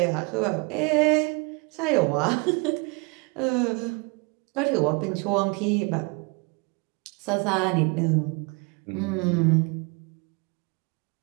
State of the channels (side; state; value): left; quieter; 29.9 dB